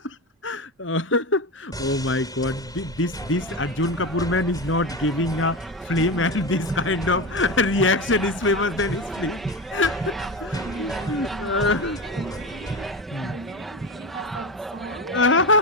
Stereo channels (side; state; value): both; normal; correlation 0.22